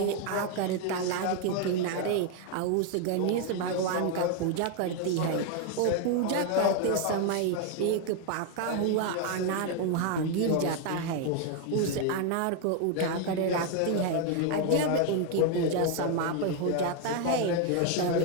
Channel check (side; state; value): both; different; correlation 0.01